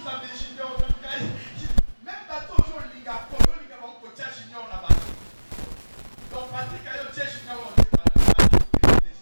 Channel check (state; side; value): inverted; both; correlation -1.00